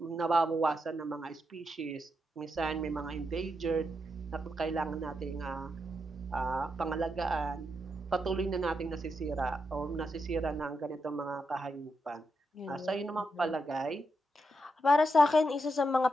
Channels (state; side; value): normal; both; correlation 0.84